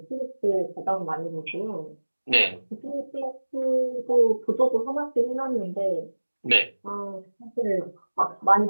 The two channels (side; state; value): both; inverted; correlation -1.00